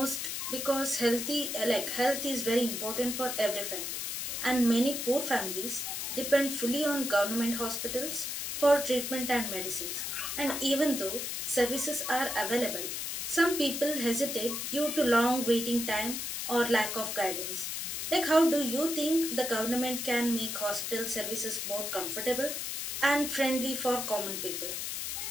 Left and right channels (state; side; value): noise; left; hiss, 3 dB below the sound